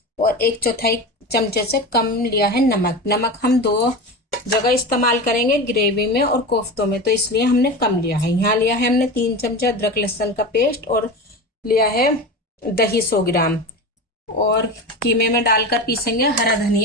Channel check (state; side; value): normal; both; correlation 0.27